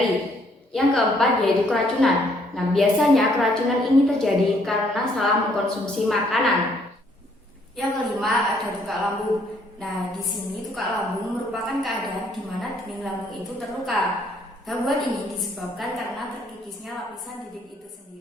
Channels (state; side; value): normal; both; correlation 0.67